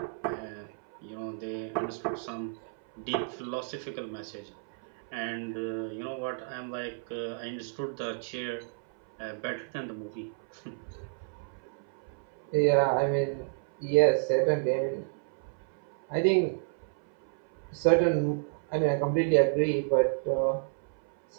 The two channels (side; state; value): left; silent; 57 dB below the other